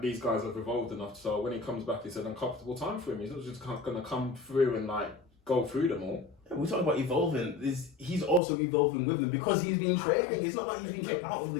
these guys have evolved enough so when he comes back, it's an uncomfortable time for him. He's not just going to come through and go through them all. We're talking about evolving. He's also evolving with them because he's been training. It's not like he's been kicked out of the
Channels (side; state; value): right; drops out; at 8.4 s